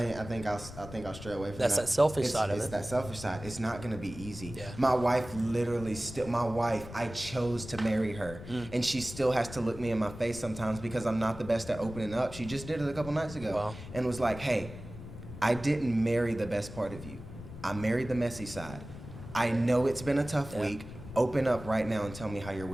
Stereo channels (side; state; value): left; noise; rumble, 13 dB below the sound